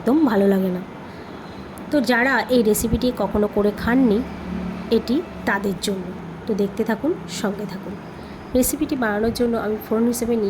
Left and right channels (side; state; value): both; identical; correlation 1.00